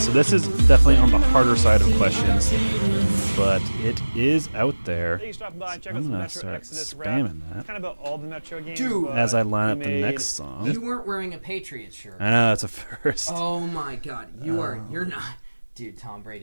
So this is definitely on the harder side of questions, but it is out there. I'm going to start spamming that as I line up the next song. You weren't wearing a Patriots shirt. I know, it's a first. Oh my God. You're not. Dude, Tom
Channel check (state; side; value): inverted; both; correlation -1.00